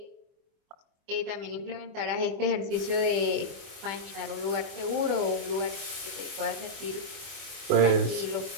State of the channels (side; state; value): left; late; 24 ms